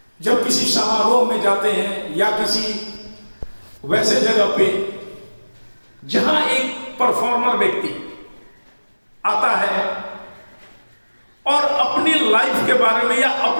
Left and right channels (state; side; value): inverted; both; correlation -1.00